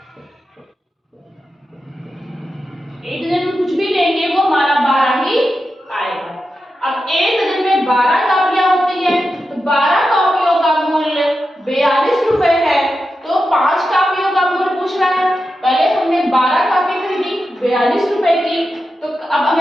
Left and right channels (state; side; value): normal; both; correlation 0.90